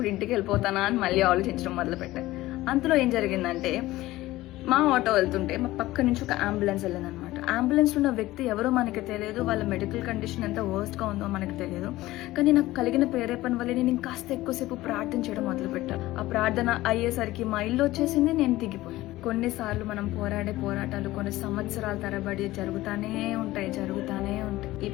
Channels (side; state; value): right; quieter; 17.2 dB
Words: ఇంటికి వెళ్ళిపోతానా అని మళ్ళీ ఆలోచించడం మొదలు పెట్టాను. అంతలో ఏం జరిగిందంటే, మా ఆటో వెళ్తుంటే మా పక్క నుంచి ఒక అంబులెన్స్ వెళ్ళిందనమాట. అంబులెన్స్ లో ఉన్న వ్యక్తి ఎవరో మనకి తెలియదు, వాళ్ళ మెడికల్ కండిషన్ ఎంత వర్స్ట్ గా ఉందో మనకు తెలియదు. కానీ నాకు కలిగిన ప్రేరేపణ వల్ల నేను ఇంకాస్త ఎక్కువసేపు ప్రార్థన చేయడం మొదలు పెట్టాను. ఆ ప్రార్థన అయ్యేసరికి మా ఇల్లు వచ్చేసింది, నేను దిగిపోయాను. కొన్నిసార్లు మనం పోరాడే పోరాటాలు కొన్ని సంవత్సరాల తరబడి జరుగుతానే ఉంటాయి. ఈ